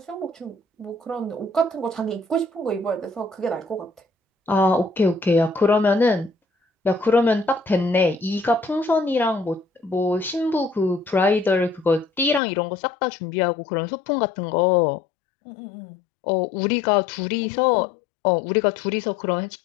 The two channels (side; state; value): right; drops out; at 12.4 s